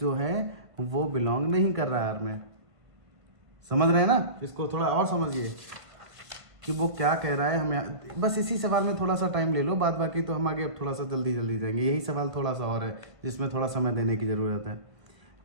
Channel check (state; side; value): late; left; 1.5 ms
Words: है वो बिलोंग नहीं कर रहा है यार में। समझ रहे हैं ना। इसको थोड़ा और समझिए कि वो क्या कह रहा है हमें। बस इसी सवाल में थोड़ा सा टाइम ले लो, बाद बाकी तो हम आगे अब थोड़ा सा जल्दी जाएंगे। यही सवाल थोड़ा सा और है जिसमें थोड़ा समय देने की ज़रूरत है।